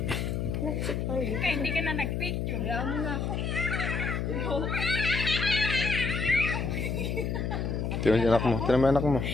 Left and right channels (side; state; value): left; noise; hum, 1 dB below the sound